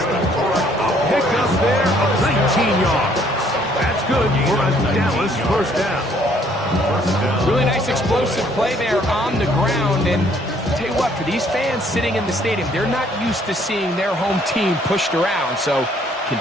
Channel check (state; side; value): normal; both; correlation 0.63